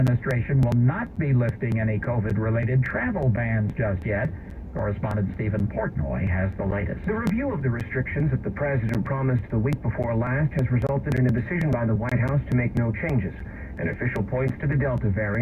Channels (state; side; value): identical; both; correlation 1.00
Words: will not be lifting any COVID-related travel bans just yet. Correspondent Stephen Portnoy has the latest. The review of the restrictions that the president promised the week before last has resulted in a decision by the White House to make no changes. An official points to the Delta